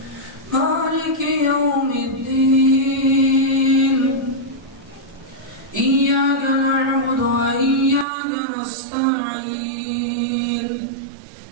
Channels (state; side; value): drops out; left; at 8.1 s